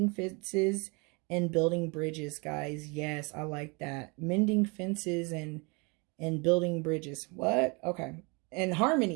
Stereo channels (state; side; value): quieter; left; 30.1 dB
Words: fences, and building bridges, guys. Yes, I like that. Mending fences and building bridges. What? Okay. And